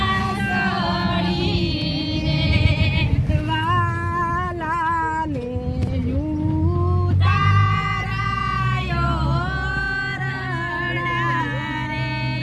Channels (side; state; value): both; identical; correlation 1.00